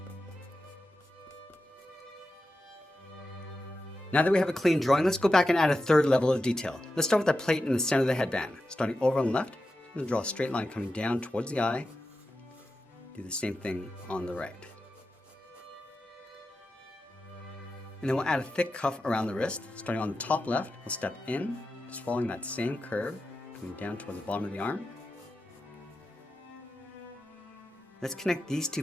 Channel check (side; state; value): both; normal; correlation 0.90